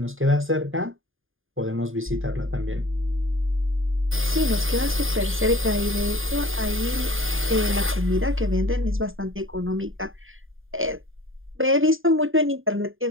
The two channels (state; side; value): late; left; 0.59 ms